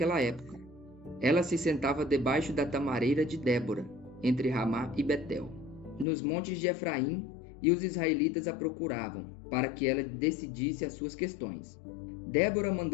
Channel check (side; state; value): right; drops out; at 6.1 s